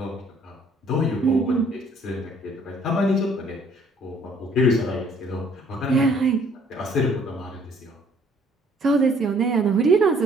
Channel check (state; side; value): normal; both; correlation 0.61